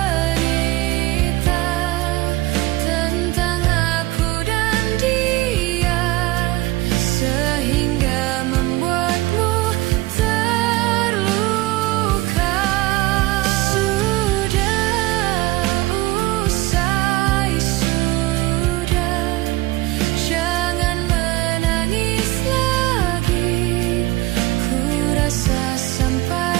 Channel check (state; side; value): quieter; left; 18.9 dB